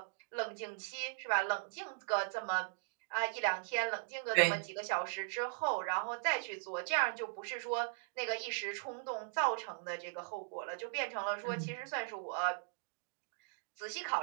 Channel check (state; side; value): silent; left; digital silence